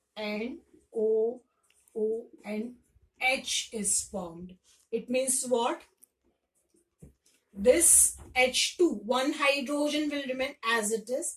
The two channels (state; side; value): identical; both; correlation 1.00